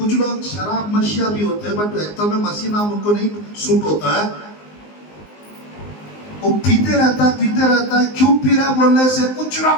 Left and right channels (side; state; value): right; late; 19 ms